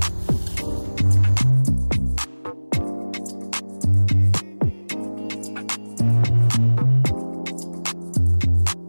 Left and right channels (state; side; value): inverted; both; correlation -1.00